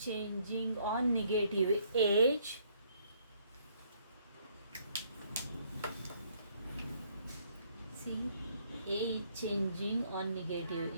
changing on negative edge. See, A is changing on negative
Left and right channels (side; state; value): both; inverted; correlation -0.66